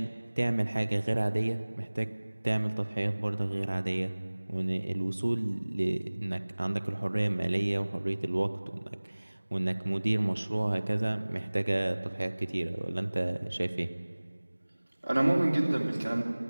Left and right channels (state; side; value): inverted; both; correlation -1.00